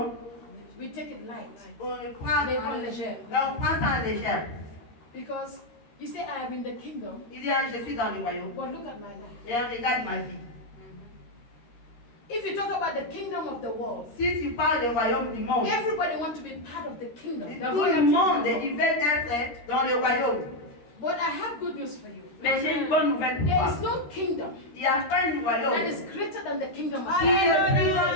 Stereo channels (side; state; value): right; late; 13 ms